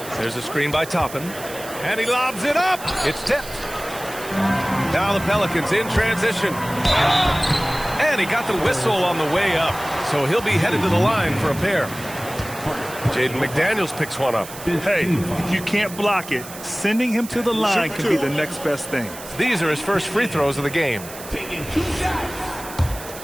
There's a screen by Toppin. And he lobs it up. It's tipped. Now the Pelicans in transition. And he got the whistle on the way up. So he'll be headed to the line for a pair. Jaden McDaniels picks one up. Hey, if you can't block it, sending him to the line can be the next best thing. These are his first free throws of the game.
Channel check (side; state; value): right; noise; hiss, 14 dB below the sound